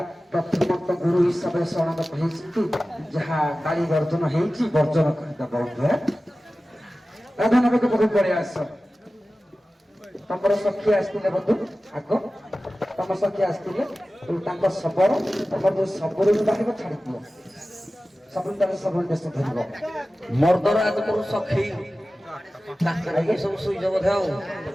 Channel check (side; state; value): both; normal; correlation 0.96